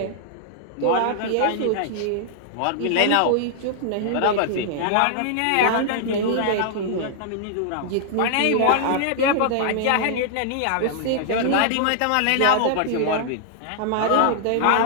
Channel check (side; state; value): both; different; correlation -0.01